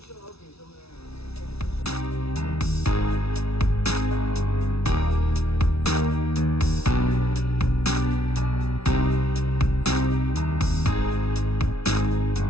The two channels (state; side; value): late; right; 0.78 ms